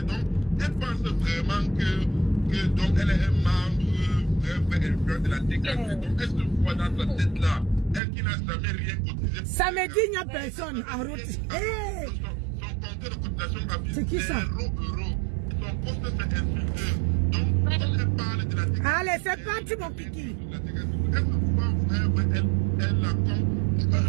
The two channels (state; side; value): drops out; left; at 8.0 s